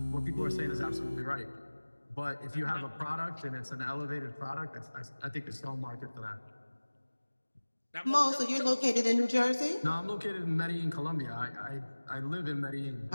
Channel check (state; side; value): inverted; both; correlation -1.00